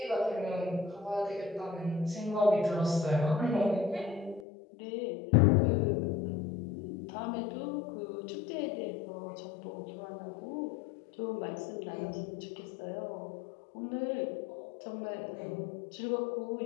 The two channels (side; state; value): right; drops out; at 4.5 s